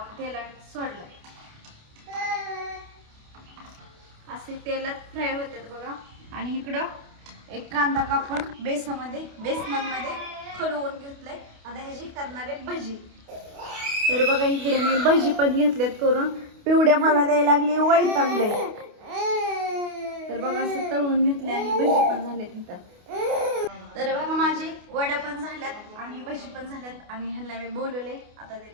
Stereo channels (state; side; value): late; left; 28 ms